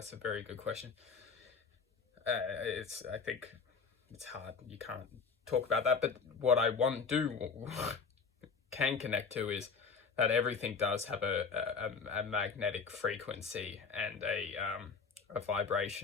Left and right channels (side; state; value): right; quieter; 5.3 dB